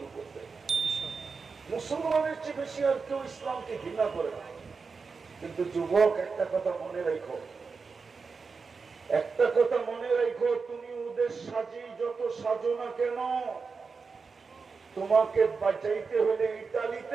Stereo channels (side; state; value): left; quieter; 4.9 dB